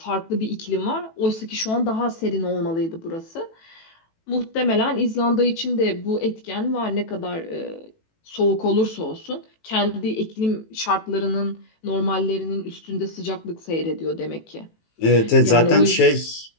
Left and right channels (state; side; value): late; right; 18 ms